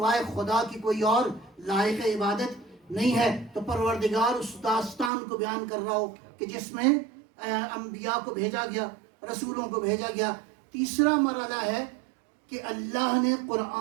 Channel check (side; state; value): left; drops out; at 5.1 s